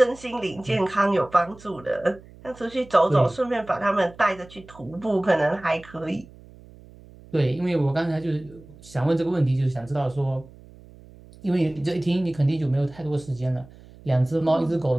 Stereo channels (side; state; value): right; noise; hum, 22 dB below the sound